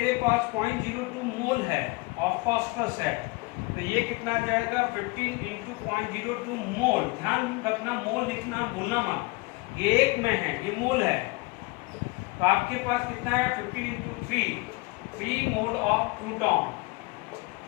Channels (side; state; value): right; quieter; 25.1 dB